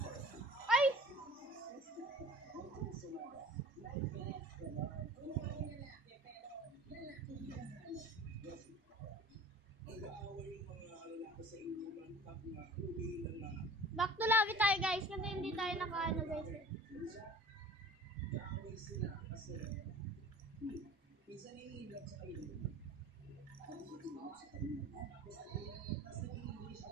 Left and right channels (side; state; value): both; normal; correlation 0.43